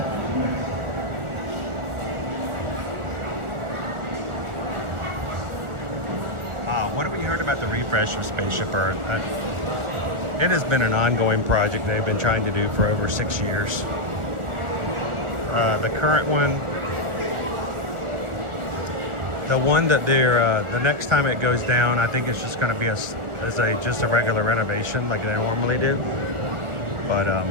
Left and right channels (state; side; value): late; left; 1.4 ms